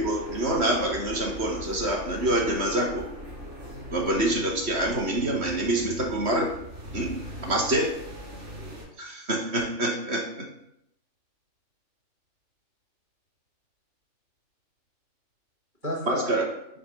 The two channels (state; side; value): late; left; 3.1 ms